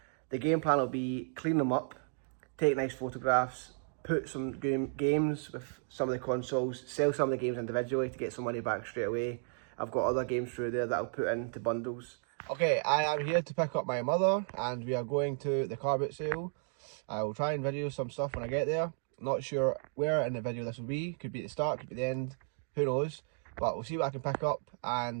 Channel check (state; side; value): silent; left; 55 dB below the other